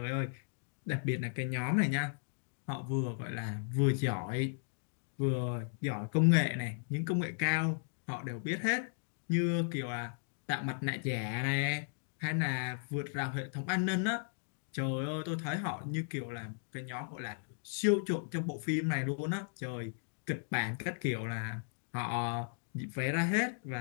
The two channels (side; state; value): right; silent; digital silence